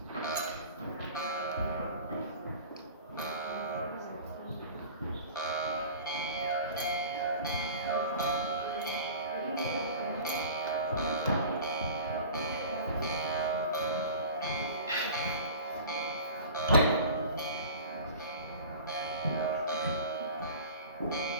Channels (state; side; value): inverted; both; correlation -0.40